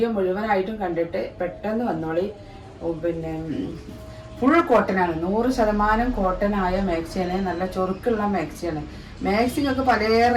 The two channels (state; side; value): identical; both; correlation 1.00